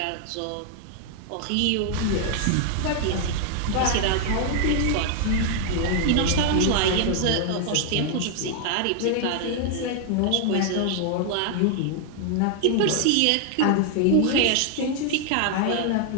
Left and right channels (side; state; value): both; different; correlation 0.00